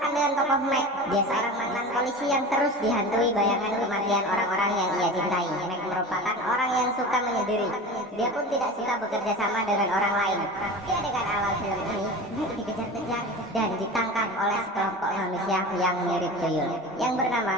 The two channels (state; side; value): normal; both; correlation 0.32